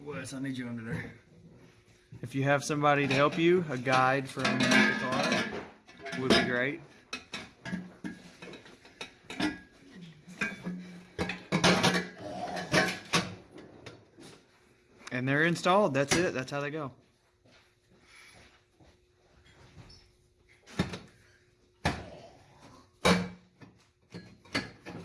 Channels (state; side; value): identical; both; correlation 1.00